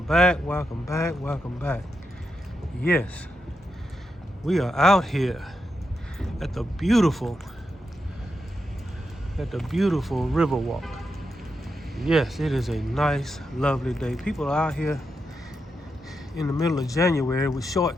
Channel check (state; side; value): normal; both; correlation 0.85